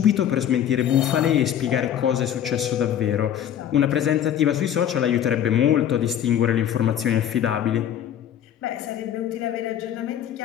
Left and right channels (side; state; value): right; quieter; 10.1 dB